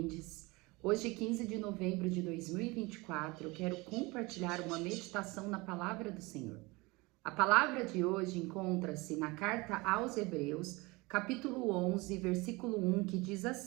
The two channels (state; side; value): quieter; left; 24.0 dB